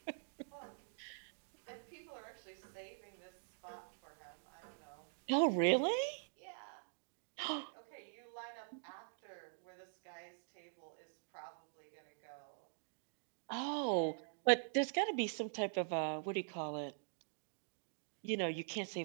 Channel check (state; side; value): silent; left; digital silence